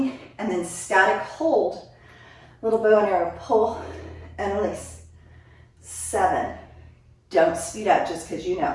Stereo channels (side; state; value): both; identical; correlation 1.00